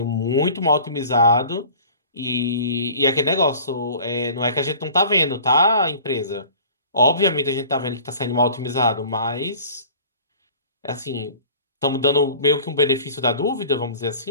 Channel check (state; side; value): inverted; both; correlation -0.46